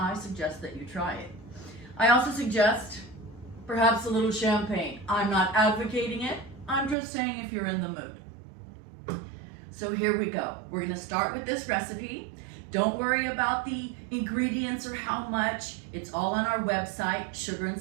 suggest that you try it. I also suggest perhaps a little champagne. I'm not advocating it, I'm just saying if you're in the mood. So here we go. We're going to start with this recipe. Don't worry about the ingredients or how much. It's all on our website,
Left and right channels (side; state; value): left; drops out; at 7.0 s